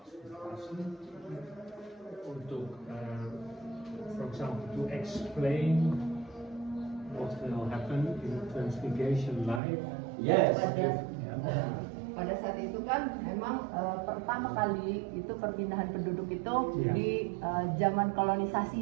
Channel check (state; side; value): drops out; left; at 9.6 s